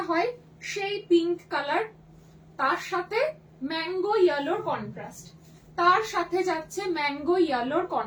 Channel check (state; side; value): identical; both; correlation 1.00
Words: হয় সেই পিঙ্ক কালার, তার সাথে ম্যাঙ্গো ইয়েলোর কন্ট্রাস্ট, তার সাথে যাচ্ছে ম্যাঙ্গো ইয়েলোর